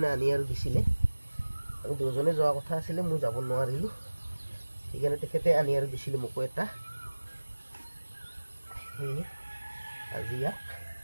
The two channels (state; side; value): inverted; both; correlation -1.00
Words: আনি আৰু দিছিলে, আমি দুজনে যোৱা কথা আছিলে, মই যাব নোৱাৰিলোঁ, সেইকাৰণে তেখেতে আনি আৰু দিছিলে মোকো এটা। সেয়ে আজি ইয়াক